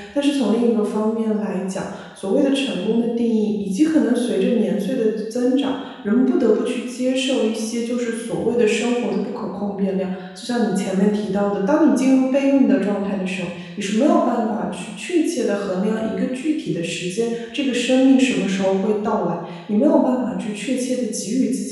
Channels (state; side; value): identical; both; correlation 1.00